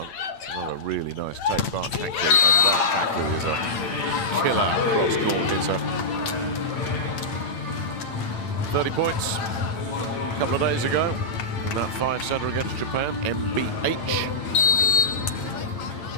Another really nice take by Hankley, and that Hankley is a killer cross-court hitter. 30 points a couple of days ago. That 5-setter against Japan, MBH.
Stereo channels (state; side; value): late; right; 9.0 ms